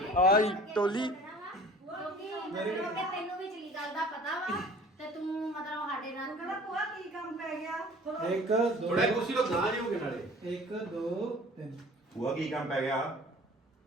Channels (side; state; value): both; normal; correlation 0.48